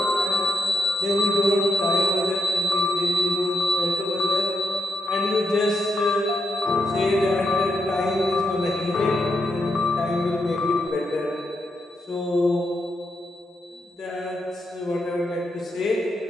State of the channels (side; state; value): both; normal; correlation 0.83